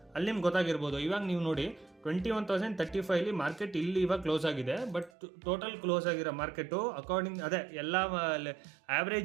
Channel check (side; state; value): left; drops out; at 5.1 s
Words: ಅಲ್ಲಿ ನಿಮ್ಗೆ ಗೊತ್ತಾಗಿರ್ಬೋದು. ಇವಾಗ ನೀವು ನೋಡಿ 21,035 ಮಾರ್ಕೆಟ್ ಇಲ್ಲಿ ಇವಾಗ ಕ್ಲೋಸ್ ಆಗಿದೆ. ಬಟ್ ಟೋಟಲ್ ಕ್ಲೋಸ್ ಆಗಿರೋ ಮಾರ್ಕೆಟು ಅಕಾರ್ಡಿಂಗ್ ಅದೇ ಎಲ್ಲ